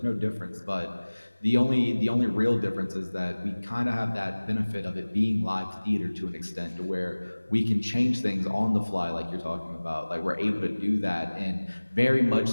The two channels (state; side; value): inverted; both; correlation -1.00